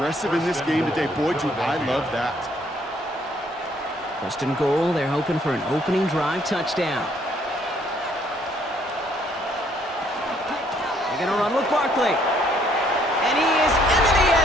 in this game today. Boy, do I love that. 1st and goal, they're hoping for an opening drive touchdown. They're going to run with Barkley. And he is into the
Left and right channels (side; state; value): both; normal; correlation 0.66